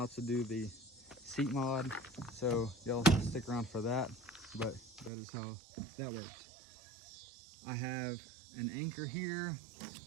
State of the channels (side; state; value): left; drops out; at 5.1 s